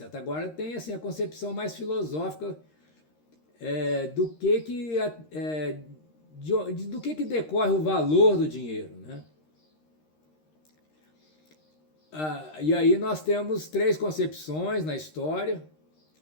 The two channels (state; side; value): late; right; 13 ms